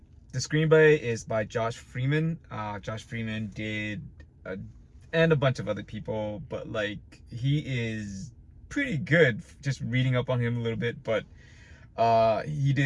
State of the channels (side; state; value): both; identical; correlation 1.00